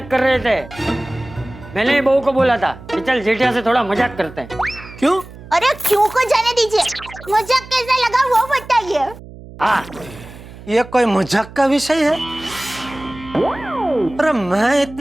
कर रहे थे। मैंने ही बहू को बोला था कि चल जेठिया से थोड़ा मजाक करते हैं। क्यों? अरे क्यों को जाने दीजिए, मजाक कैसा लगा वो बताइए। हाँ, ये कोई मजाक का विषय है? अरे मैं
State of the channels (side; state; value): right; noise; hum, 17 dB below the sound